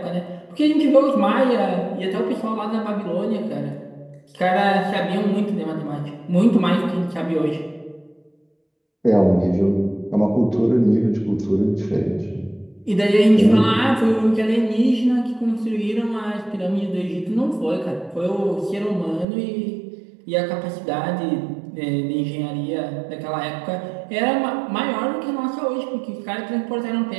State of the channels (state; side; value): drops out; left; at 19.2 s